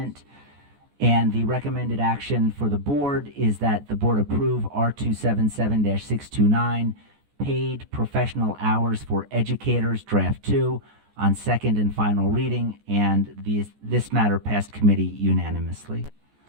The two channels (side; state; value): left; late; 14 ms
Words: And the recommended action for the board is that the board approve R277-629, paid professional hours for educators, draft 2, on second and final reading, and this matter passed committee unanimously.